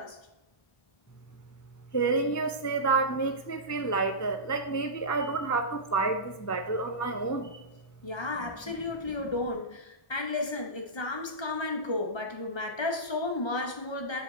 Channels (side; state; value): right; late; 1.3 ms